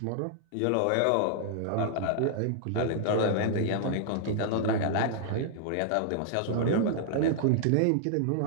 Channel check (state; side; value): different; both; correlation -0.01